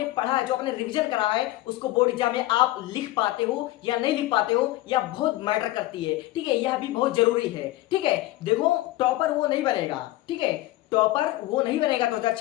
पढ़ा है, जो आपने रिवीजन करा है, उसको बोर्ड एग्जाम में आप लिख पाते हो या नहीं लिख पाते हो, या बहुत मैटर करती है। ठीक है, यह भी बहुत जरूरी है। ठीक है, देखो, टॉपर वो नहीं बनेगा, ठीक है, टॉपर वो नहीं बनेगा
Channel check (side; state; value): right; quieter; 17.1 dB